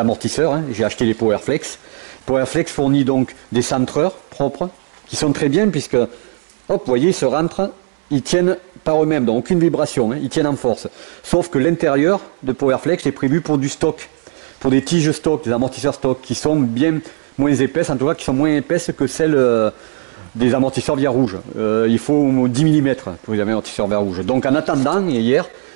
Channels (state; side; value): silent; left; 68 dB below the other